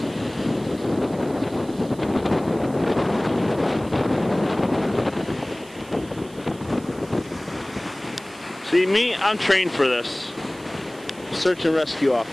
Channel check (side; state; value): right; noise; hiss, 23 dB below the sound